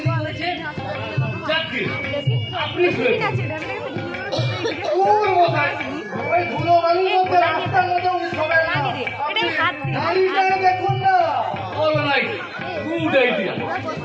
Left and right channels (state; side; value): identical; both; correlation 1.00